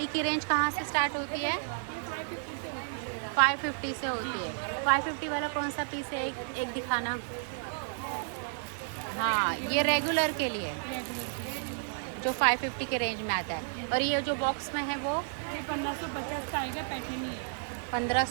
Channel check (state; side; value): silent; left; digital silence